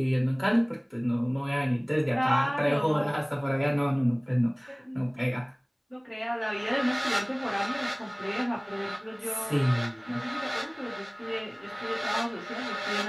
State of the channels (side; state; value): both; identical; correlation 1.00